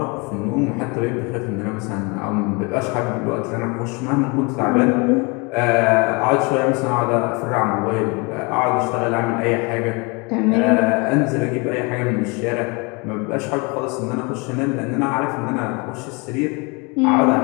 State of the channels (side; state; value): right; quieter; 29.5 dB